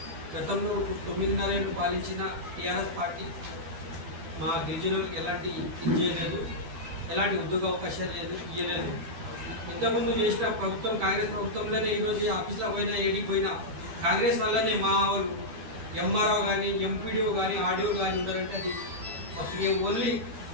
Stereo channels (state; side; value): late; left; 12 ms